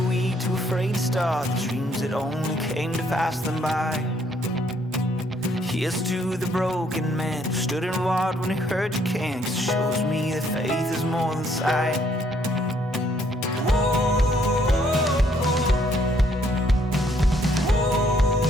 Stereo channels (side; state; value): both; normal; correlation 0.67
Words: weak, too afraid to start, the dreams that only came to pass them by. Here's to the broken man who stood and walked when he heard you can, 'cause it shows me that faith is more than sight.